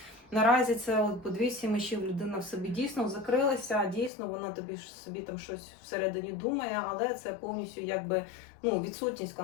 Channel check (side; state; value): right; drops out; at 4.1 s